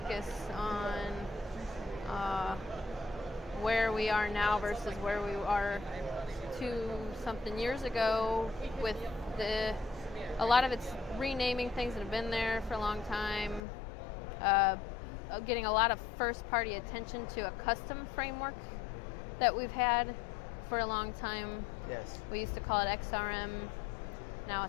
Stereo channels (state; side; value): drops out; right; at 13.6 s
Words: on where we are now versus where we are 2-something years ago, with a lot of it's renaming things that have been there for a long time, getting a lot of first-party attention to a custom framework that we've had for a long time. Yes. We used to call it XRM. Now